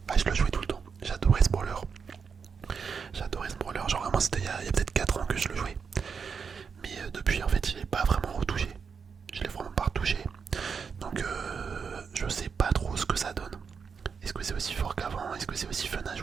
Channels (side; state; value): left; quieter; 6.0 dB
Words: bah, je le jouais tout le temps. J'adorais ce brawler. Genre vraiment, c'était il y a peut-être 4 ans que je le jouais. Mais depuis, en fait, je l'ai pas vraiment retouché. Je l'ai vraiment pas retouché. Donc, je sais pas trop ce que ça donne. Est-ce que c'est aussi fort qu'avant? Est-ce que c'est aussi fun à